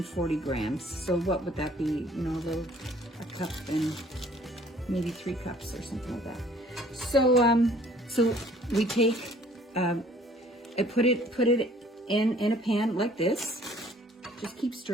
grams. So what would that be? You know, a cup and maybe 3 cups or something like that. So, so we take, and put it in a pan like this. Just keep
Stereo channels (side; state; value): both; normal; correlation 0.56